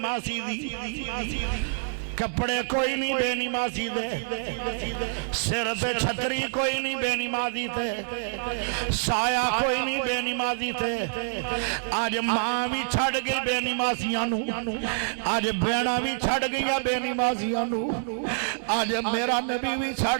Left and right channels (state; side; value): silent; left; digital silence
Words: دی کپڑے کوئی نہیں بے نمازی دے سر تے چھتری کوئی نہیں بے نمازی تے سایہ کوئی نہیں بے نمازی تے آج ماں بھی چھڑ گئی بے نمازیاں نو آج بینا بھی چھڑ گئی بے نمازیاں نو آج میرا نبی بھی چھڑ